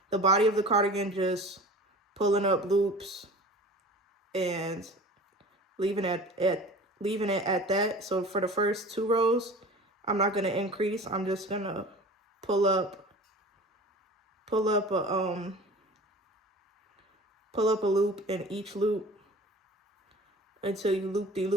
cardigan, just pulling up loops and leaving it at that. So for the first 2 rows, I'm not gonna increase. I'm just gonna pull up a loop in each loop until you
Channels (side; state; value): both; normal; correlation 0.40